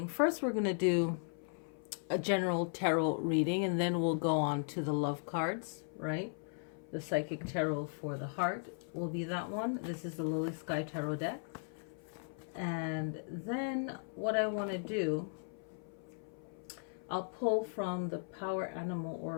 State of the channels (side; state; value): right; silent; 53 dB below the other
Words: First, we're going to do a general tarot reading, and then we'll go on to the love cards, right? The psychic tarot for the heart will be that one. This is the Lilly Sky Tarot deck. And then what I want to do, I'll pull from the Power Animal